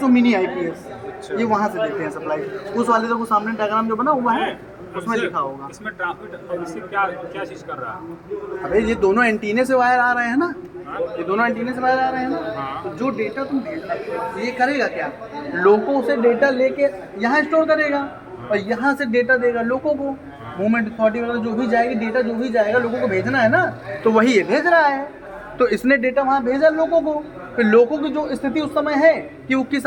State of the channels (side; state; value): both; identical; correlation 1.00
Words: और मिनी IPS, ये वहाँ से देते हैं सप्लाई। उस वाले तो सामने डायग्राम जो बना हुआ है उसमें लिखा होगा। इसमें ट्रांसमिट इससे क्या चीज़ कर रहा है? अबे ये दोनों एंटीने से वायर आ रहे हैं ना, ये दोनों एंटीने से वायर आ रहे हैं ना, तो जो डेटा तुम भेज रहे हो ये करेगा क्या? लोगों से डेटा लेके यहाँ स्टोर करेगा और यहाँ से डेटा देगा लोगों को। मूवमेंट अथॉरिटी वगैरह जो भी जाएगी, डेटा जो भी जाएगा लोगों को भेजना है ना, तो वही ये भेज रहा है। तो इसने डेटा वहाँ भेजा लोगों को, फिर लोगों की जो स्थिति उस समय है कि वो किस